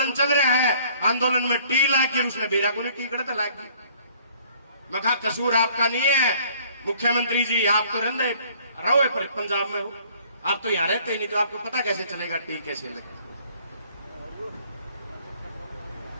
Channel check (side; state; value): both; inverted; correlation -0.57